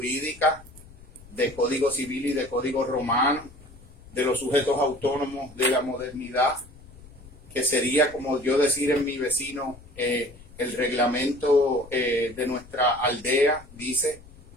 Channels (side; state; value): left; noise; rumble, 22 dB below the sound